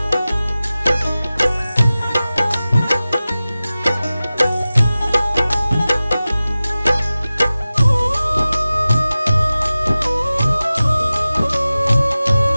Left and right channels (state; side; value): inverted; both; correlation -0.97